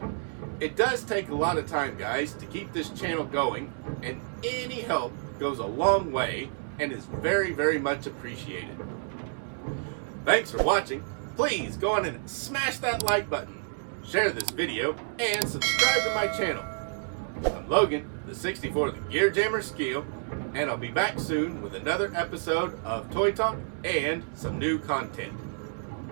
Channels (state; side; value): silent; left; 58 dB below the other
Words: It does take a lot of time, guys, to keep this channel going, and any help goes a long way and is very, very much appreciated. Thanks for watching. Please go on and smash that like button, share this video, and subscribe to my channel. I'm Logan, the 64th Gear Jammer Skeele, and I'll be back soon with another episode of Toy Talk and some new content.